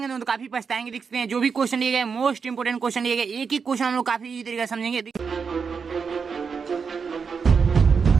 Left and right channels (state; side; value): quieter; left; 5.7 dB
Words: तो काफी पछताएंगे। देखते हैं जो भी क्वेश्चन लिए गए मोस्ट इंपोर्टेंट क्वेश्चन लिए गए, एक एक क्वेश्चन हम लोग काफी इजी तरीके से समझेंगे।